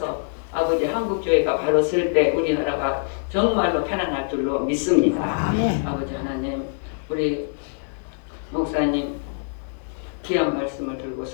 아버지 한국교회가 바로 설 때 우리나라가 정말로 편안할 줄로 믿습니다. 아버지 하나님 우리 목사님 귀한 말씀을 들고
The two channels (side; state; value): right; silent; digital silence